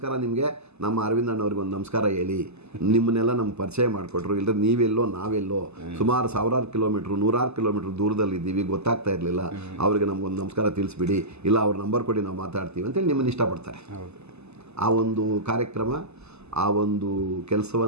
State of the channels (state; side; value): late; left; 0.80 ms